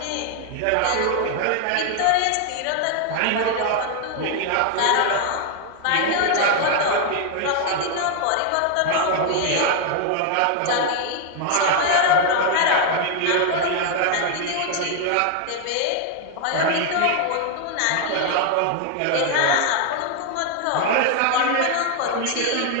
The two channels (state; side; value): different; both; correlation 0.00